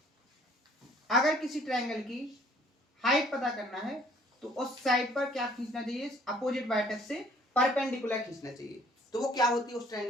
अगर किसी ट्रायंगल की हाइट पता करना है तो उस साइड पर क्या खींचना चाहिए? अपोजिट वर्टेक्स से परपेंडिकुलर खींचना चाहिए। तो वो क्या होती है उस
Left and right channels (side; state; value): both; normal; correlation 0.59